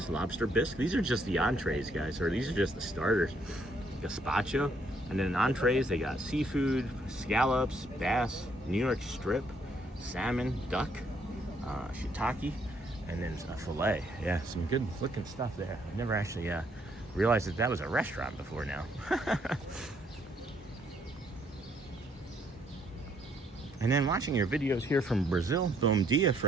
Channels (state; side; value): normal; both; correlation 0.70